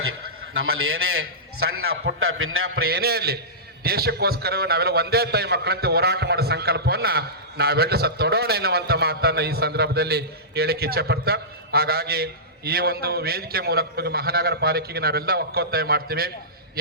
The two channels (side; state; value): both; normal; correlation -0.18